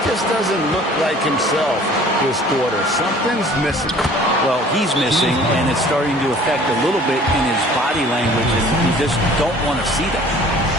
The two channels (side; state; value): both; normal; correlation 0.50